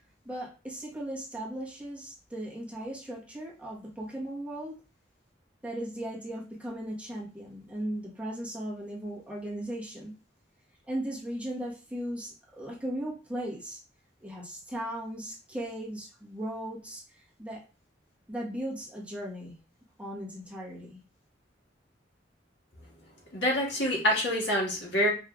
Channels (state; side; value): normal; both; correlation 0.47